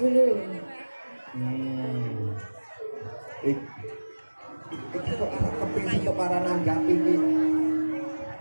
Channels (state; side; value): inverted; both; correlation -1.00